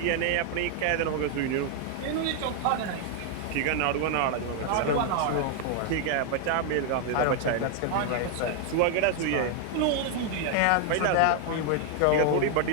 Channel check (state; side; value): different; both; correlation 0.00